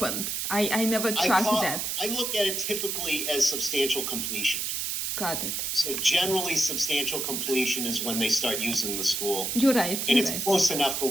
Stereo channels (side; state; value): right; noise; hiss, 1 dB below the sound